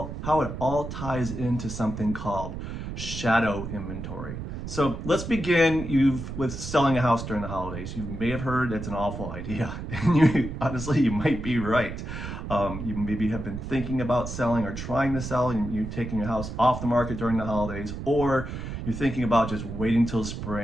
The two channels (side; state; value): right; noise; rumble, 7 dB below the sound